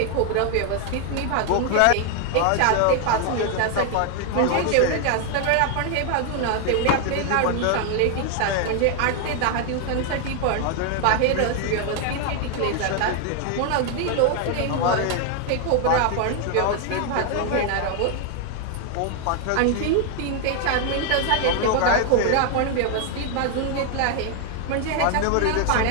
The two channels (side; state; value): both; different; correlation 0.00